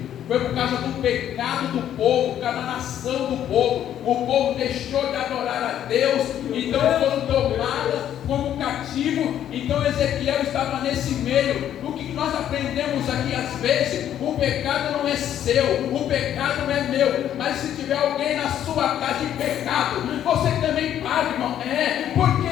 Foi por causa do pecado do povo, por causa da nação do povo. O povo deixou de adorar a Deus, então foram tomados como cativo. Então Ezequiel estava nesse meio. O que nós aprendemos aqui às vezes, o pecado não é seu, o pecado não é meu. Mas se tiver alguém na sua casa em pecado, você também paga, irmão. Por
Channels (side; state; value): right; quieter; 10.7 dB